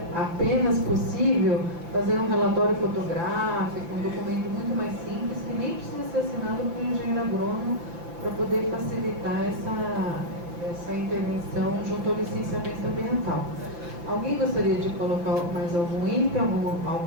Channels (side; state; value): left; late; 5.9 ms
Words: apenas possível fazer um relatório fotográfico, um documento muito mais simples, que nem precisa ser assinado por um engenheiro agrônomo, para poder facilitar essa intervenção junto ao licenciamento ambiental. Alguém gostaria de colocar mais algum item,